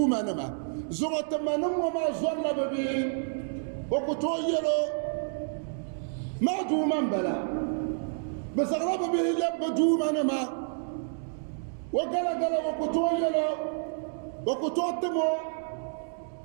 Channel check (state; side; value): silent; left; digital silence